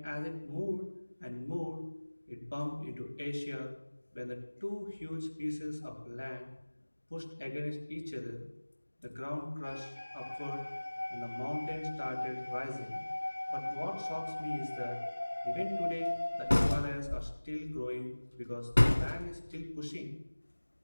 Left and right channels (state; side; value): inverted; both; correlation -1.00